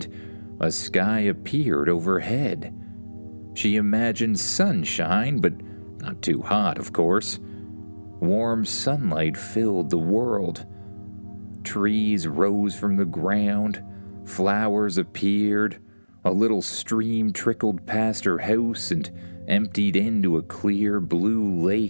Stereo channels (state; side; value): inverted; both; correlation -1.00